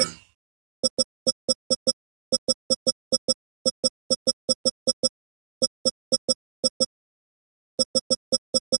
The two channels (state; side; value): silent; left; digital silence